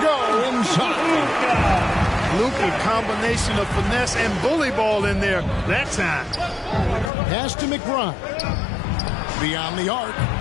inside. Luka, combination of finesse and bully ball in there that time. Pass to McBride. Beyond the arc.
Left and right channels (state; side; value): drops out; right; at 7.1 s